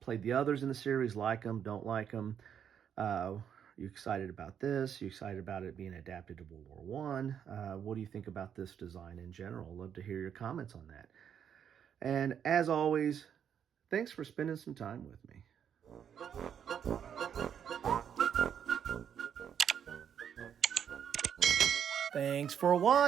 played the others in the series? Like them? Don't like them? You excited about this? You excited about it being adapted to World War One? What do you think about this design in general? Love to hear your comments on that. And as always, thanks for spending some time with me. Thanks for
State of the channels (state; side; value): quieter; left; 8.5 dB